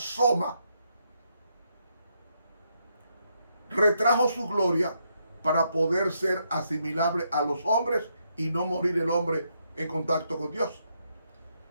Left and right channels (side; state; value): both; inverted; correlation -0.78